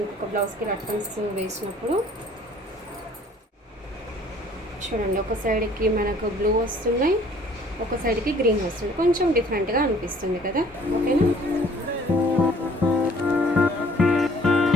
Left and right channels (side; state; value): both; normal; correlation 0.56